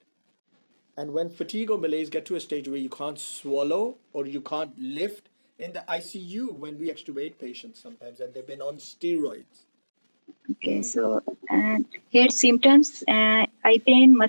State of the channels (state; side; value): inverted; both; correlation -1.00